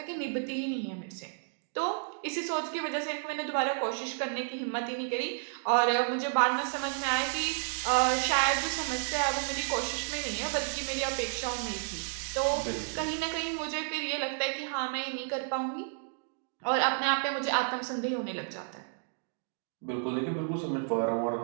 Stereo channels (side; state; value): left; silent; digital silence